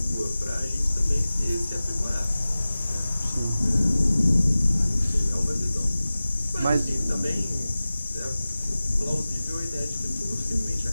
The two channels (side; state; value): both; inverted; correlation -0.97